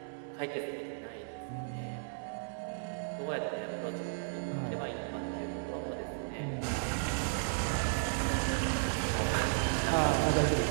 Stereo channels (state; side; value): silent; left; digital silence